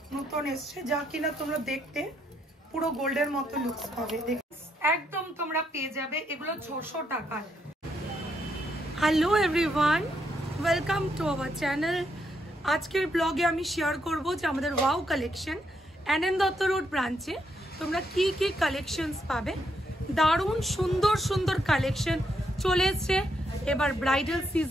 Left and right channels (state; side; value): normal; both; correlation 0.77